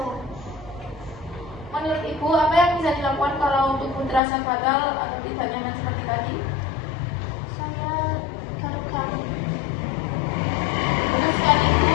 Menurut Ibu, apa yang bisa dilakukan kalau tubuh terasa gatal atau tidak nyaman seperti tadi? Saya garuk-garuk. Terus sekali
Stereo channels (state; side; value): drops out; right; at 4.2 s